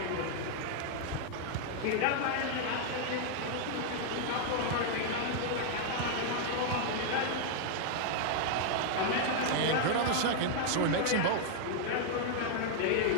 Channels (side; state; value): both; different; correlation -0.01